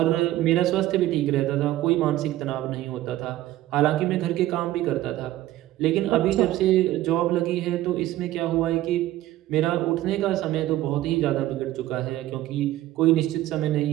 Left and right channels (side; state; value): left; quieter; 14.9 dB